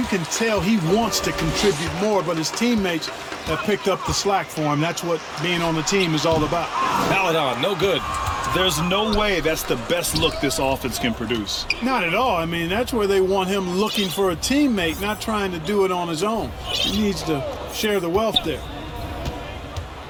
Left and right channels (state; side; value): identical; both; correlation 1.00